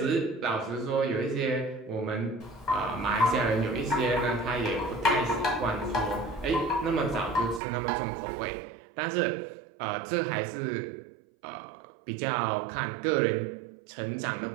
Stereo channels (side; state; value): left; drops out; at 7.6 s